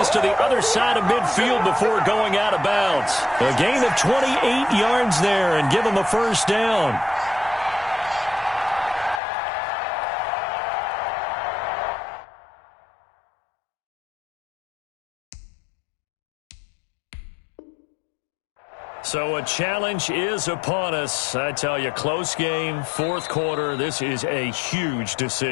to the other side of midfield before going out of bounds. A gain of 28 yards there and give him a first down. So a challenge is upon us. I tell you, close game, 4th quarter. This is a huge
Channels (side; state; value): right; drops out; at 9.2 s